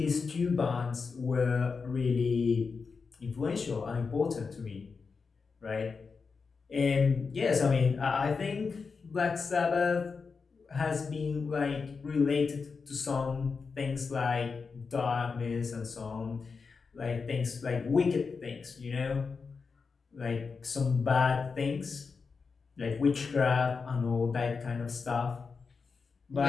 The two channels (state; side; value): quieter; right; 5.0 dB